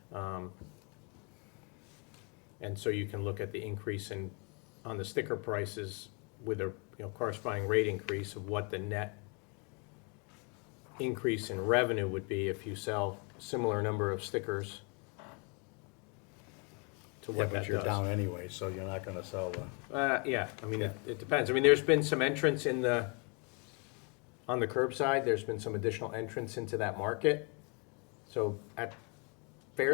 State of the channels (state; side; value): quieter; right; 34.4 dB